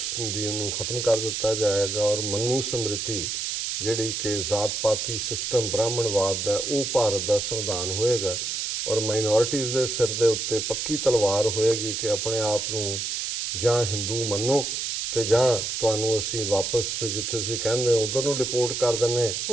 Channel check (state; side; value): noise; right; hiss, 2 dB below the sound